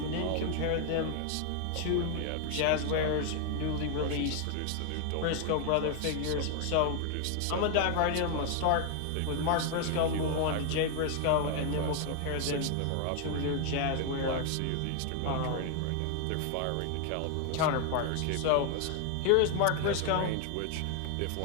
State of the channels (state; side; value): different; both; correlation 0.00